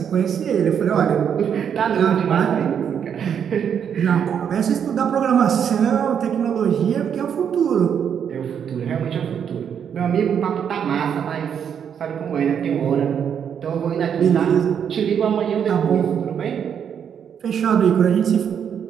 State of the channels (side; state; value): left; quieter; 8.0 dB